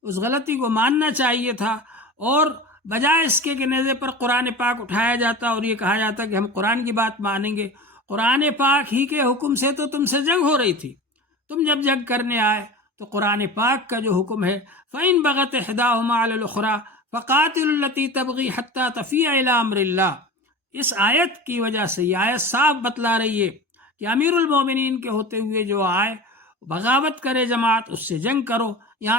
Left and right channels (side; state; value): both; normal; correlation 0.33